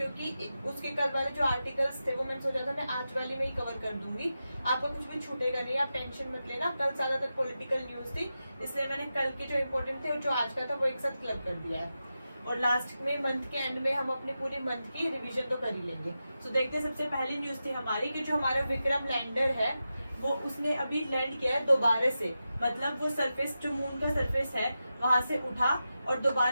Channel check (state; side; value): inverted; both; correlation -0.91